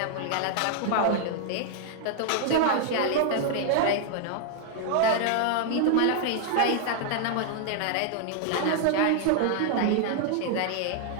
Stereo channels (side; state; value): both; different; correlation 0.00